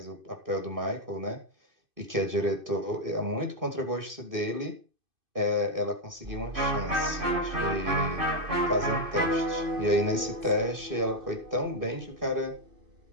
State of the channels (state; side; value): late; left; 2.6 ms